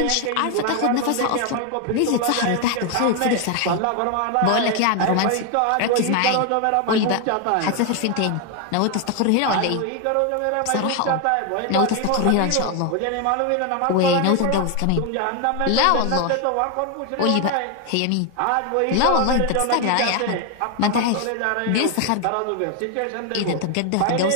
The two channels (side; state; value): both; different; correlation 0.01